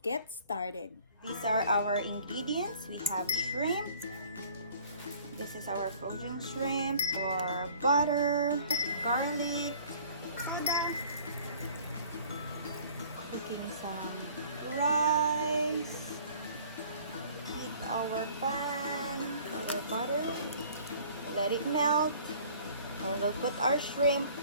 get started. These are our ingredients. We have shrimp. This is our frozen shrimp, or butter, garlic, cooking some rice, heat our pan, our butter, let it melt, and we'll put our shrimp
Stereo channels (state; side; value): inverted; both; correlation -0.52